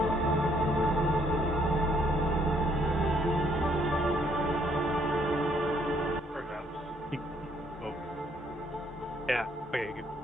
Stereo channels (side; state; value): both; normal; correlation 0.68